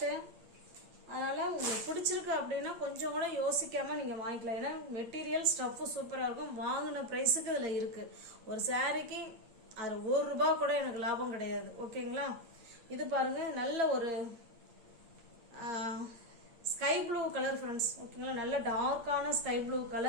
அதனால உங்களுக்கு பிடிச்சிருக்கு அப்படின்னா கொஞ்சம் கூட யோசிக்காம நீங்க வாங்கிக்கலாம். ஏன்னா மெட்டீரியல் ஸ்டஃப் சூப்பரா இருக்கும். வாங்கின பிரைஸுக்கு இதுல இருக்கு. ஒரு சாரிக்கு அது ₹1 கூட எனக்கு லாபம் கிடையாது. ஓகேங்களா, இது பாருங்க, நல்ல ஒரு ஸ்கை ப்ளூ கலர் ஃப்ரெண்ட்ஸ். ஓகேங்களா, நல்ல டார்க்கான ஸ்கை ப்ளூ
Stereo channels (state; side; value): late; left; 8.7 ms